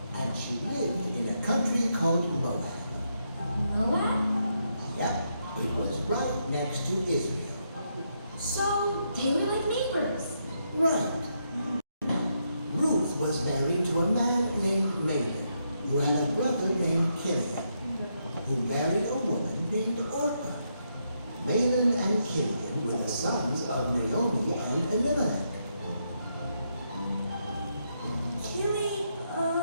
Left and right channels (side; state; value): both; inverted; correlation -0.80